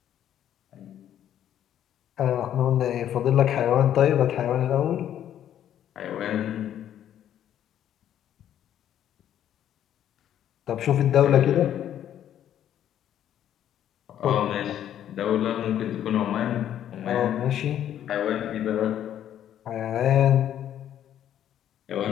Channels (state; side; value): quieter; right; 10.7 dB